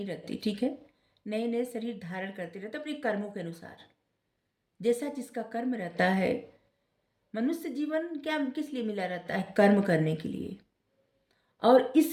रहती, ठीक है। नए नए शरीर धारण करती रहती है अपने कर्मों के अनुसार, जैसा जिसका कर्म रहता है। मनुष्य जीवन क्या किस लिए मिला रहता है? कर्म करने के लिए। और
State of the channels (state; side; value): identical; both; correlation 1.00